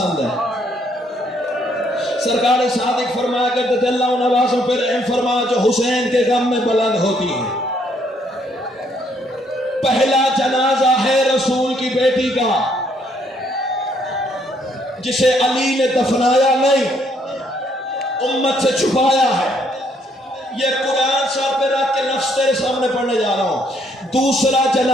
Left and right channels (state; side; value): normal; both; correlation 0.69